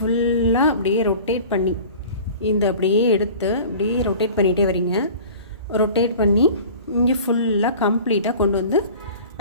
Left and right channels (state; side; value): inverted; both; correlation -0.42